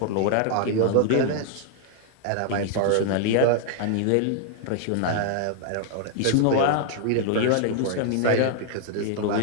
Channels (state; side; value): different; both; correlation 0.00